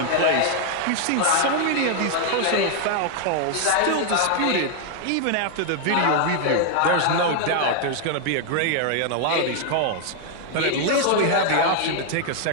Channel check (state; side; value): different; both; correlation 0.00